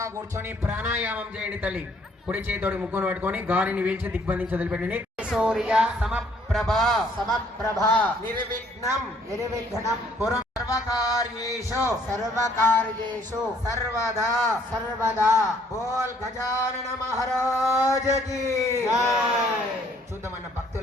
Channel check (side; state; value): both; normal; correlation 0.63